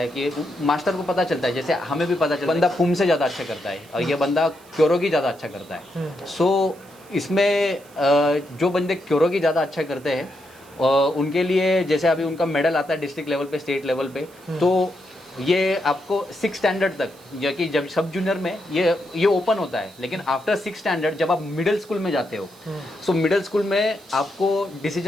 कि जैसे हमें भी पता चलता है बंदा पुम से ज़्यादा अच्छा करता है और ये बंदा क्योरोगी ज़्यादा अच्छा करता है। सो इसमें जो बंदे क्योरोगी ज़्यादा अच्छा करते हैं उनके लिए, जैसे अभी उनका मेडल आता है डिस्ट्रिक्ट लेवल पे, स्टेट लेवल पे, तो ये आपको 6 स्टैंडर्ड तक, या कि जब सब जूनियर में ये ओपन होता है, लेकिन आफ्टर 6 स्टैंडर्ड जब आप मिडिल स्कूल में जाते हो, सो मिडिल स्कूल में आपको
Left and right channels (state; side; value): noise; right; hiss, 26 dB below the sound